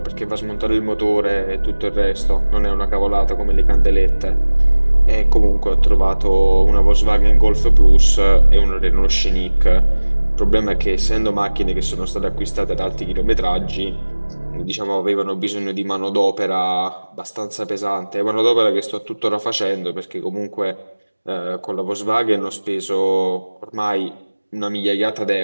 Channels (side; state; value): both; inverted; correlation -1.00